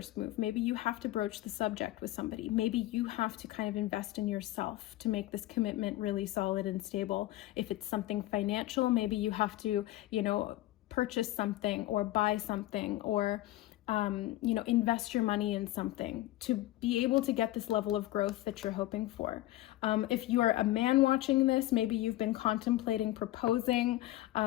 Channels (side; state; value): right; quieter; 16.2 dB